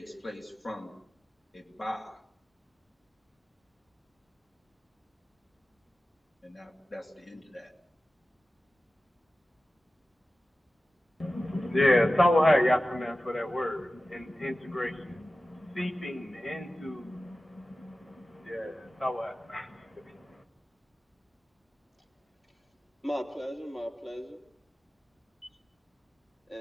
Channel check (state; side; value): normal; both; correlation 0.95